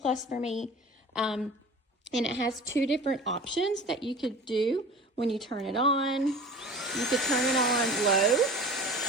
for me. And it has 2 different options that you could do when you turn it on. You could turn it on low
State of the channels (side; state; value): both; normal; correlation 0.39